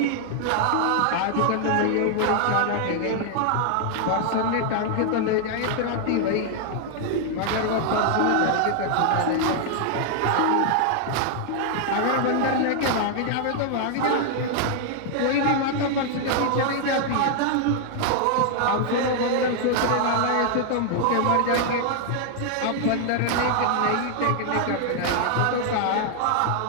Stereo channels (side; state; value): both; different; correlation 0.00